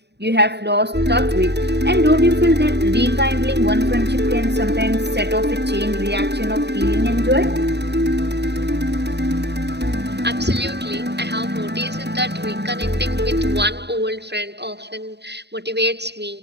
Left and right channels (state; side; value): late; left; 0.49 ms